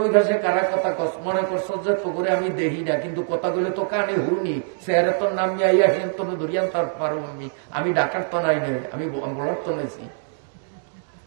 ওই ঘাসে কারা কথা কস মনে করছ যে তো করে আমি দেখি না, কিন্তু কথাগুলো তো কানে হুনি, স্যারে তোর নাম আইয়া হেন তো ধরিয়ান তার পারো। আমি ডাকার তো নাই নাই, আমি বলার তো নেছি,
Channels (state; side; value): silent; left; digital silence